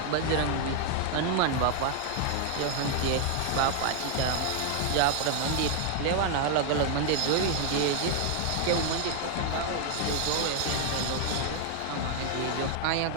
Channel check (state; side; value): different; both; correlation 0.00